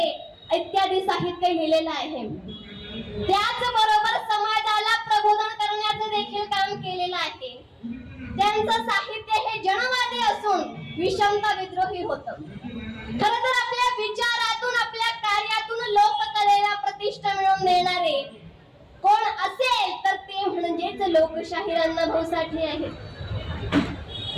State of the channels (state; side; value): identical; both; correlation 1.00